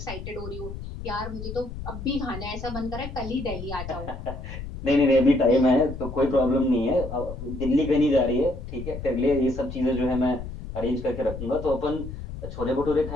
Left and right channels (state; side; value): noise; left; rumble, 9 dB below the sound